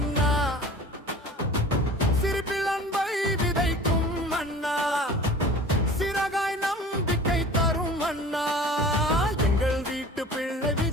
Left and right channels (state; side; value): normal; both; correlation 0.42